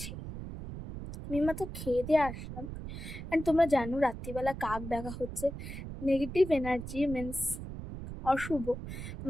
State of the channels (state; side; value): noise; right; rumble, 9 dB below the sound